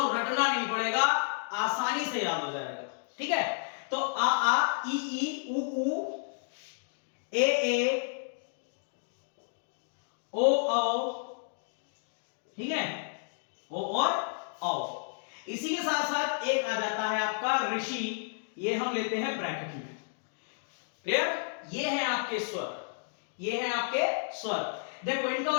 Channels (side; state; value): right; silent; digital silence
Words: रटना नहीं पड़ेगा, आसानी से याद हो जाएगा। ठीक है, तो आ, ई, ऊ, ए, ओ। ठीक है, ओ और औ। इसी के साथ साथ एक आ जाता है आपका ऋषि, ये हम लेते हैं ब्रैकेट में। क्लियर? ये है आपके स्वर, देखो इनका